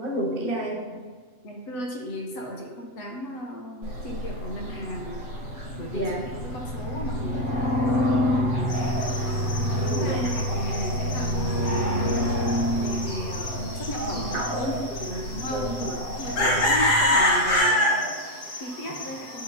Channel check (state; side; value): late; right; 7.9 ms